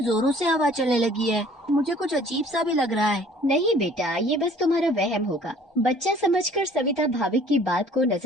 जोरों से हवा चलने लगी है। मुझे कुछ अजीब सा भी लग रहा है। नहीं बेटा, ये बस तुम्हारा वहम होगा। बच्चा समझकर सविता भाविक की बात को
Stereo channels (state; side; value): normal; both; correlation 0.53